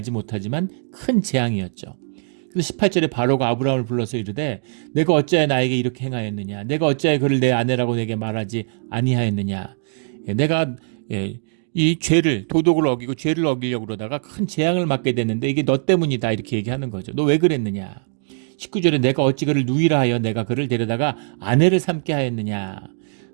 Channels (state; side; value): silent; left; digital silence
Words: 못하지만 큰 재앙이었죠. 그래서 18절에 바로가 아브라함을 불러서 이르되 내가 어찌하여 나에게 이렇게 행하였느냐, 내가 어찌하여 그를 내 아내라고 내게 말하지 아니하였느냐, 내가 이 죄를 도덕을 어기고 죄를 어기려고 그러다가 큰 재앙을 맞게 됐는데 이게 너 때문이다 이렇게 얘기하는 거죠. 너 왜 그랬느냐. 19절에 내가 어찌 그를 누이라 하여 내가 그를 데려다가 아내를 삼게 하였느냐.